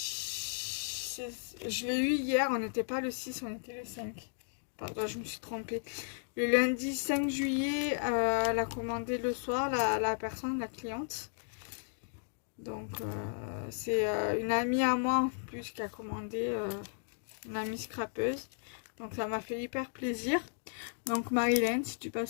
Je l'ai eu hier, on n'était pas le 6, on était le 5. Pardon, je me suis trompée. Le lundi 5 juillet, elle a commandé le soir, la personne, la cliente. Donc, c'est une amie à moi en plus qui a commandé, une amie scrapeuse. Donc, ça m'a fait hyper plaisir. Donc, Marilyn, si tu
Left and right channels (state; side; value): silent; right; digital silence